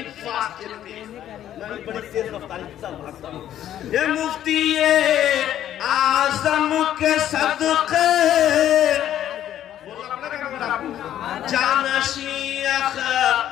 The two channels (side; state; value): right; quieter; 11.5 dB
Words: fast. मैं बड़ी तेज रफ्तारी के साथ भागता हूँ। ये मुफ्ती आज़म के सदक़े जानशी